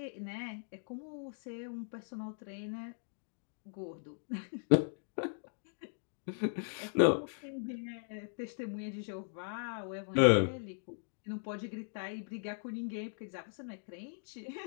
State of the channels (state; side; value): silent; right; digital silence